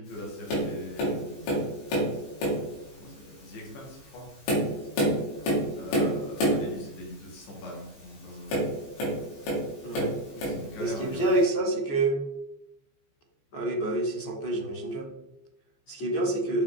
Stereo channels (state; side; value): late; right; 14 ms